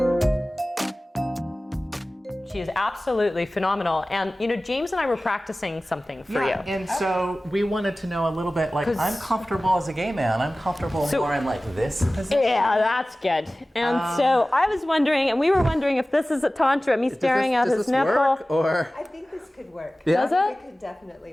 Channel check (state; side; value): normal; both; correlation 0.97